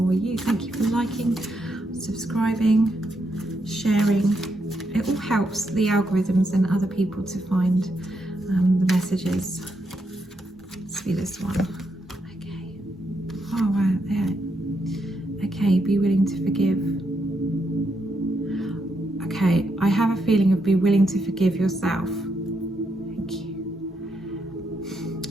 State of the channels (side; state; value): both; normal; correlation 0.80